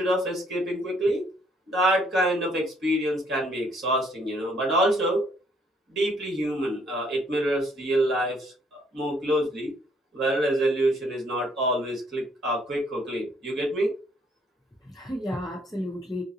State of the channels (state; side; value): normal; both; correlation 0.66